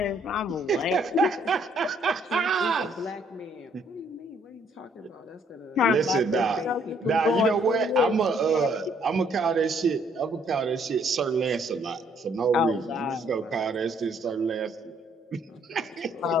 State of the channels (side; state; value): both; normal; correlation 0.66